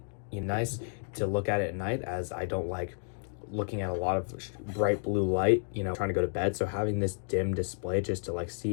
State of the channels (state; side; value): silent; right; digital silence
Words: nice to look at it at night, as I don't like looking at a lot of bright blue light, trying to go to bed. So having this dim display just to